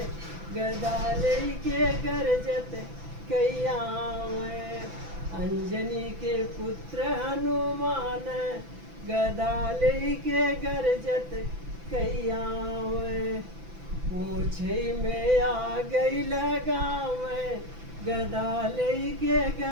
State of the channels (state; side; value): late; left; 6.0 ms